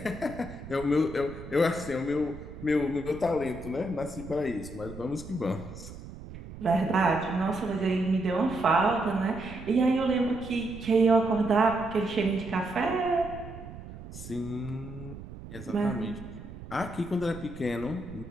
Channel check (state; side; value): noise; right; rumble, 13 dB below the sound